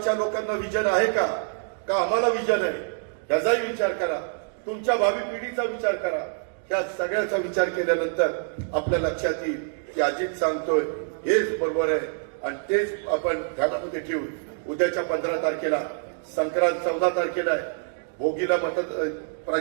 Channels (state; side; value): silent; left; digital silence